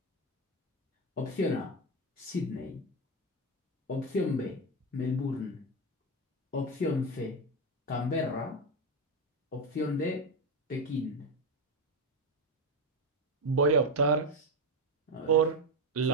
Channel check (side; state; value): both; normal; correlation 0.11